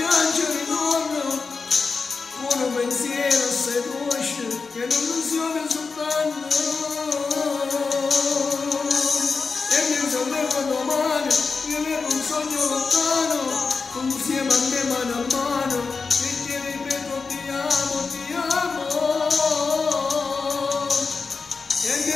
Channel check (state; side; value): quieter; right; 4.7 dB